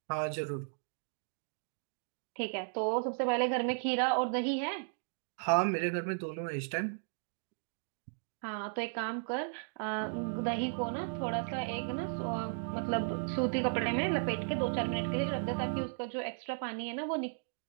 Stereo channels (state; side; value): silent; left; digital silence